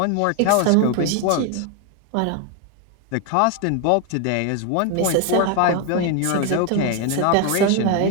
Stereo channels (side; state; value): both; different; correlation 0.01